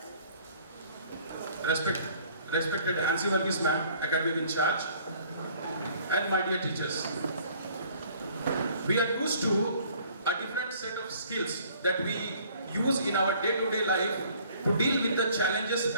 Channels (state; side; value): inverted; both; correlation -0.56